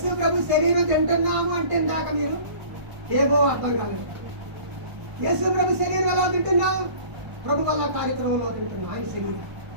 ప్రభు శరీరం తింటున్నాము అంటే ఇందాక మీరు ఏమో అర్థం కాలేదు. యేసు ప్రభు శరీరం ఎలా తింటున్నాం? ప్రభు వల్ల కార్యక్రమంలో తింటున్నాం ఆయన శరీరం.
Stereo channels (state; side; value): late; left; 1.5 ms